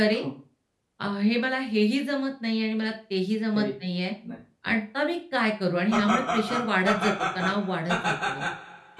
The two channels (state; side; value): identical; both; correlation 1.00